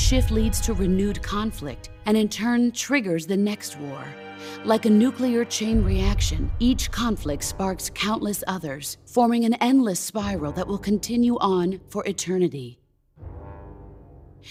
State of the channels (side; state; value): both; identical; correlation 1.00